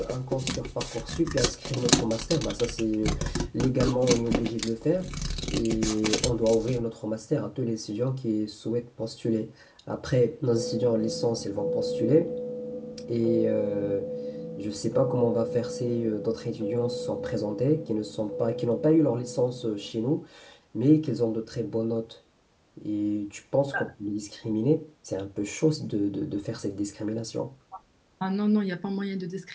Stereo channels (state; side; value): identical; both; correlation 1.00